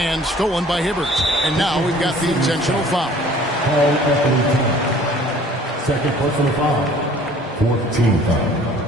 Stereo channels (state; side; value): normal; both; correlation 0.52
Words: stolen by Hibbert. And now we've got the intentional foul. Second personal foul. 14 foul.